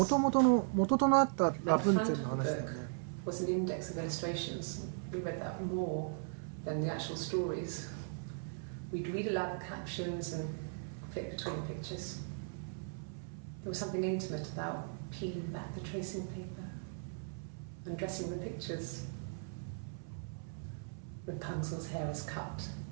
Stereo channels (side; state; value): left; silent; 52 dB below the other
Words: となったラプンツェルの話だよね。 Was an index of illustrations. We read that more than the actual stories. We'd read aloud the captions and flip between the pictures. There was something intimate about peeling back the tracing paper and dressing the pictures. Rapunzel's hair is cut.